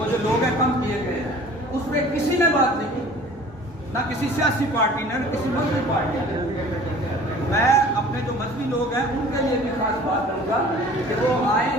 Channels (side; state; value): both; normal; correlation 0.47